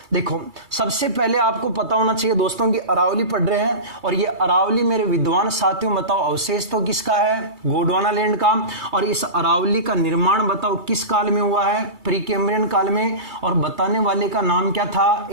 देखो, सबसे पहले आपको पता होना चाहिए दोस्तों कि अरावली पढ़ रहे हैं, और ये अरावली मेरे विद्वान साथियों बताओ अवशेष तो किसका है, गोंडवाना लैंड का। और इस अरावली का निर्माण बताओ किस काल में हुआ है, प्री कैम्ब्रियन काल में। और बताने वाले का नाम क्या था,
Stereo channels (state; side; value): late; left; 2.3 ms